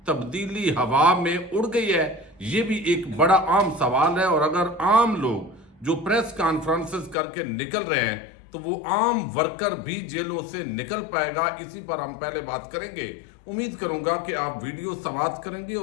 تبدیلی ہوا میں اڑ گئی ہے؟ یہ بھی ایک بڑا عام سوال ہے، اور اگر عام لوگ جو پریس کانفرنسز کر کے نکل رہے ہیں تو وہ عام ورکر بھی جیلوں سے نکل پائے گا؟ اسی پر ہم پہلے بات کریں گے۔ امید کروں گا کہ آپ ویڈیو سماعت کریں گے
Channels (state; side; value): drops out; right; at 7.2 s